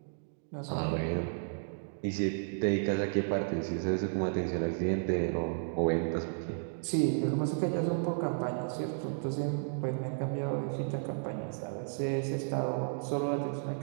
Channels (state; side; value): silent; left; digital silence